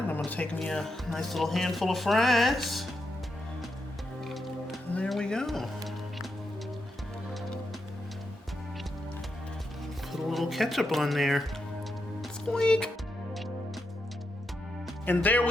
gonna take me a nice little handful of fries. And there we go. Put a little ketchup on there. Squeak. And there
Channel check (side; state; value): both; normal; correlation 0.84